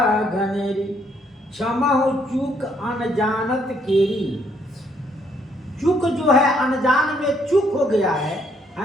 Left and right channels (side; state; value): both; normal; correlation 0.69